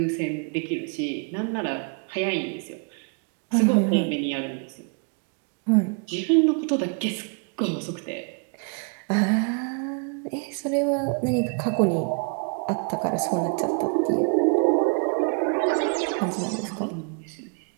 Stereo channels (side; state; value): left; quieter; 39.5 dB